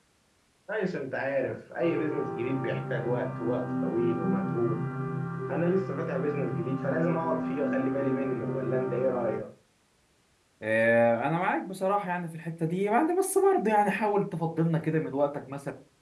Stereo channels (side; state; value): both; identical; correlation 1.00